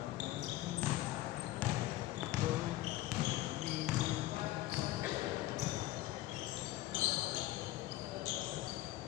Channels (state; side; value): quieter; right; 16.1 dB